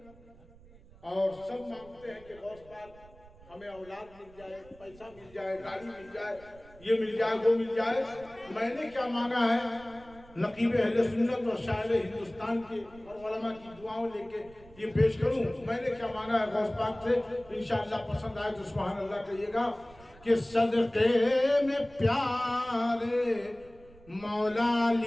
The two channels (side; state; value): right; noise; rumble, 23 dB below the sound